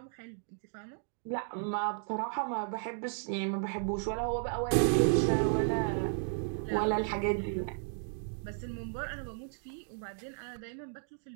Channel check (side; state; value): left; silent; digital silence